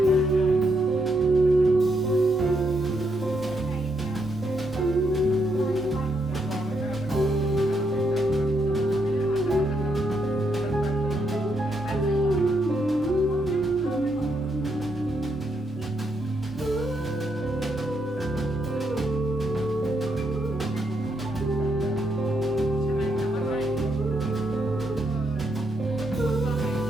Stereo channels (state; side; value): normal; both; correlation 0.78